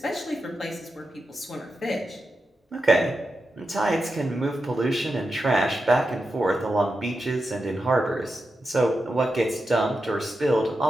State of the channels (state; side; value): normal; both; correlation 0.89